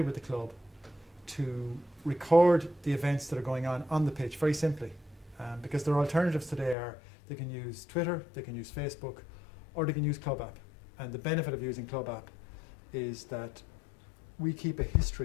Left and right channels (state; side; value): drops out; right; at 6.8 s